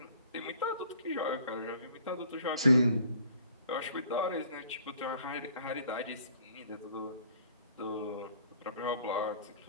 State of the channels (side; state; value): both; inverted; correlation -0.56